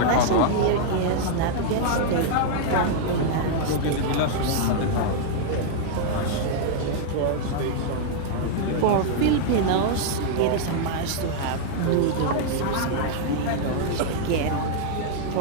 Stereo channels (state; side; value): different; both; correlation -0.01